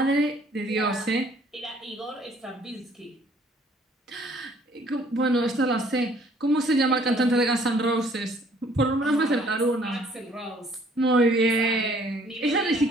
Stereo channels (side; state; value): both; normal; correlation 0.60